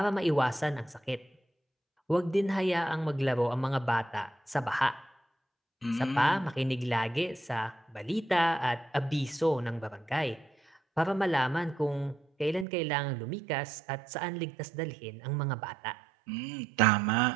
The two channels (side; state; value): left; drops out; at 12.7 s